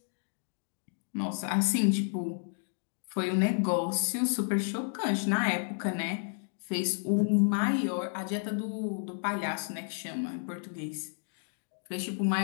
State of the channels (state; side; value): silent; right; 57 dB below the other